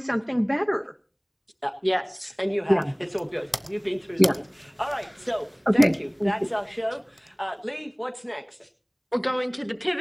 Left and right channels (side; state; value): both; identical; correlation 1.00